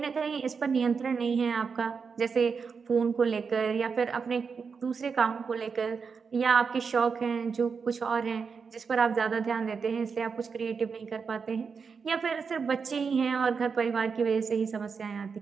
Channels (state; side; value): quieter; left; 5.6 dB